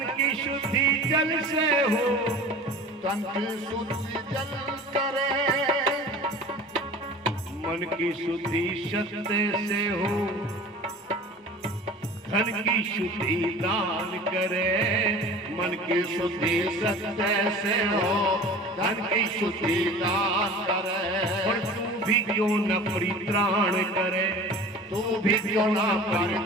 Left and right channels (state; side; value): normal; both; correlation 0.40